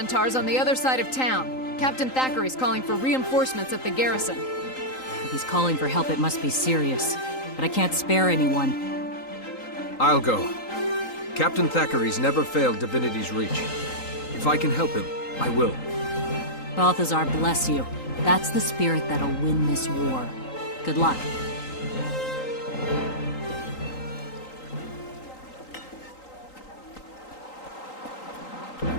on the other side of town. Captain Thackeray's calling for reinforcements at the garrison. If he's calling for help, it must be serious. But I can't spare anyone. I'll go. Captain Thackeray's never failed divinity's reach. If I can help him, I will. Balthazar bless you. That's the spirit that'll win this war. Good luck.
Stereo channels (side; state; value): right; late; 3.8 ms